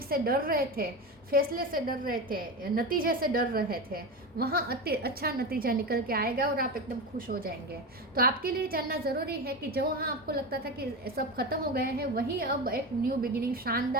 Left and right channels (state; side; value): normal; both; correlation 0.21